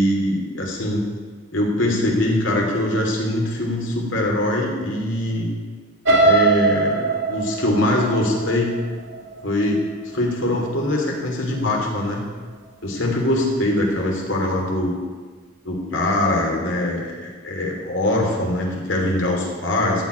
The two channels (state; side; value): normal; both; correlation 0.30